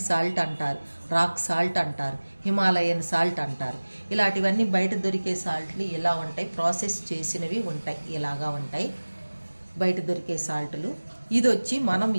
సాల్ట్ అంటారు, రాక్ సాల్ట్ అంటారు, హిమాలయన్ సాల్ట్ అంటారు. ఇలాంటివన్నీ బయట దొరికే సాల్ట్లు ఇలా ఉంటాయి, ప్రాసెస్ చేసినవి ఉంటాయి, ఇలాగా ఉంటాయి. బయట దొరికే సాల్టులు. ఇది వచ్చి మనం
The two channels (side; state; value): both; inverted; correlation -1.00